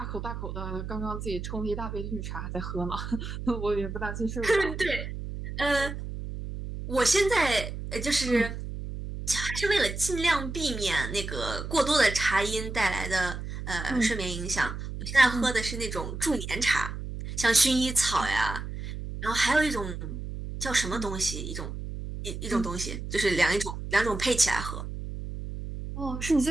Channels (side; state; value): right; noise; hum, 7 dB below the sound